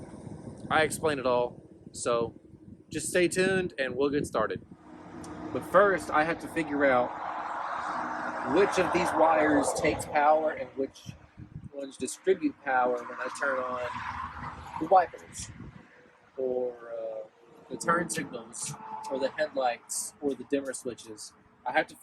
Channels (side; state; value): both; identical; correlation 1.00